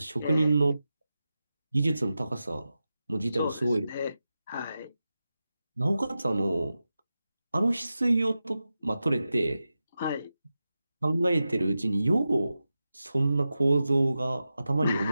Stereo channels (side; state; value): both; inverted; correlation -0.92